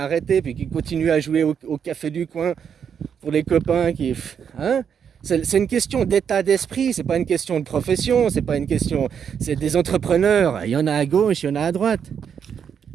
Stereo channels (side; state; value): left; quieter; 7.6 dB